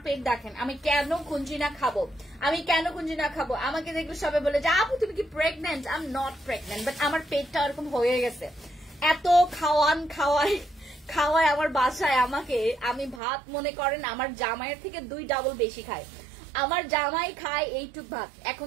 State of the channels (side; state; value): left; drops out; at 13.2 s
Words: পেট দেখেন, আমি কেন কুঞ্জিনা খাবো? আমি কেন কুঞ্জিনা খাবো? আমাকে দেখলে সবাই বলে যে আপু তুমি কি pregnant? I am not pregnant, but আমার পেটটা এরকম হয়ে গেছে। এত খাওয়ায় আমার বাসায় আমাকে, আমি ভাত মনে করেন আমার জামাইয়ের থেকে 2 ডাবল বেশি খাই। আমার জামাই খায় এইটুক ভাত, এখন